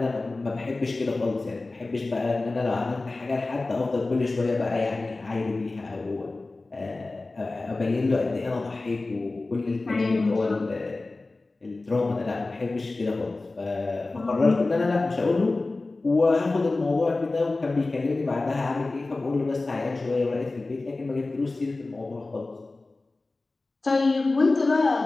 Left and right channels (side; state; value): right; quieter; 3.3 dB